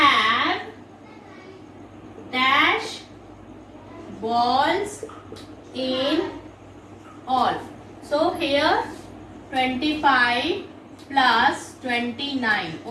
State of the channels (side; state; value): both; identical; correlation 1.00